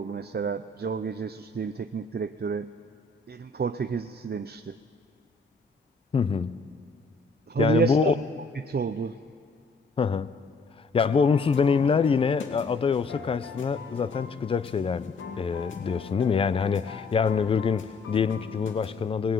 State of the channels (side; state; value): right; quieter; 3.7 dB